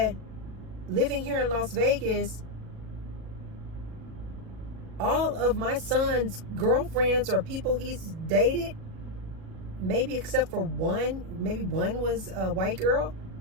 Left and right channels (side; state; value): left; late; 37 ms